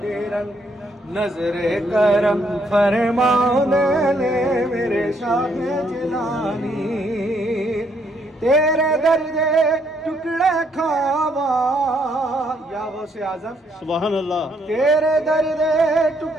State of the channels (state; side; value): normal; both; correlation 0.71